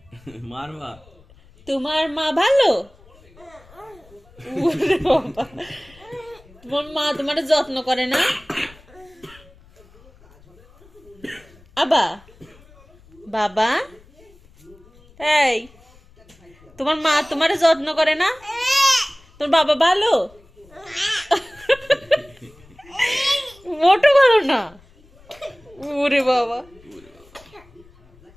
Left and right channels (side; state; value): left; noise; rumble, 26 dB below the sound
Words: মারবা? তোমার মা ভালো? ওরে বাবা, তোমার মা তোমার যত্ন করে না? আবা, বাবা, এই তোমার মা তোমার যত্ন করে না? তোর বাবা ভালো? মোটো ভালো না। ওরে বাবা,